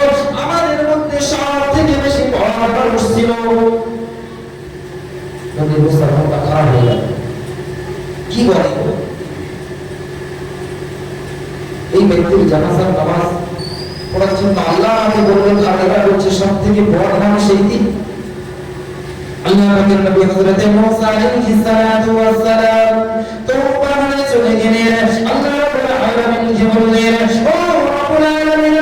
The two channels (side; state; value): both; identical; correlation 1.00